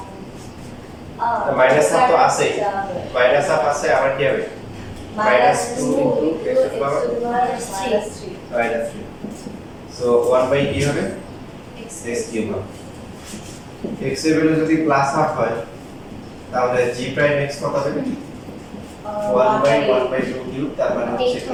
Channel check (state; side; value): identical; both; correlation 1.00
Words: মাইনাস হাফ তো আছেই, মাইনাস হাফ আছে, আবার কি হবে? Minus 2 into x to power minus 3। So 1 কি হবে? এক্স কিউব হবে। এক্স এর ভ্যালু যদি প্লাস হাফ হয় তাহলে জি প্রাইম এক্স কত হবে? 1/1/2 কিউব, তার মানে হচ্ছে